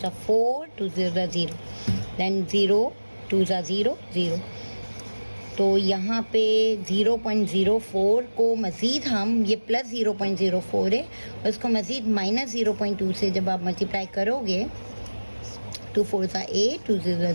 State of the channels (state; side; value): inverted; both; correlation -1.00